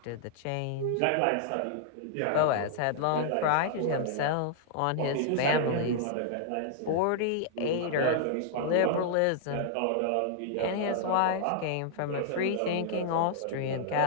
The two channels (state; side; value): different; both; correlation -0.01